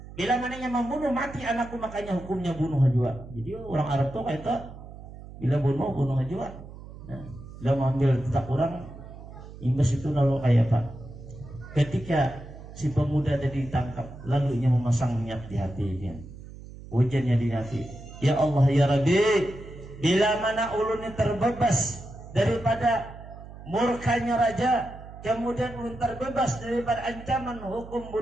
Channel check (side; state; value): right; noise; hum, 15 dB below the sound